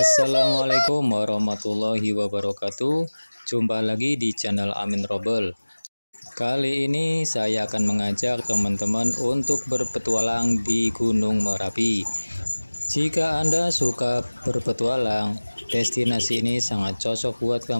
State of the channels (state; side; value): inverted; both; correlation -1.00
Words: warahmatullahi wabarakatuh. Jumpa lagi di channel Amin Robel. Kali ini saya akan mengajak teman-teman untuk berpetualang di Gunung Merapi. Jika Anda suka berpetualang, destinasi ini sangat cocok buat